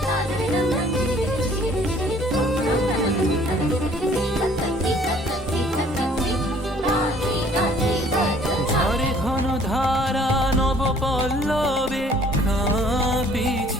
ধারা নব পল্লবে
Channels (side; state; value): both; normal; correlation 0.57